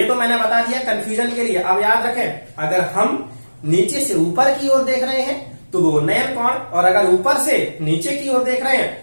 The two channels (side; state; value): both; inverted; correlation -1.00